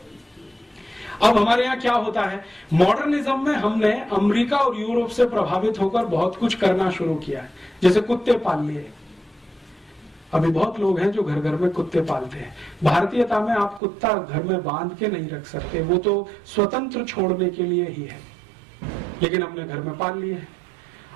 अब हमारे यहाँ क्या होता है, मॉडर्निज्म में हमने अमेरिका और यूरोप से प्रभावित होकर बहुत कुछ करना शुरू किया है। जैसे कुत्ते पाल लिए, अभी बहुत लोग हैं जो घर घर में कुत्ते पालते हैं। भारतीयता में आप कुत्ता घर में बांध के नहीं रख सकते, वो तो स्वतंत्र छोड़ने के लिए ही है, लेकिन हमने घर में पाल लिए हैं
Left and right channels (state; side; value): drops out; left; at 13.8 s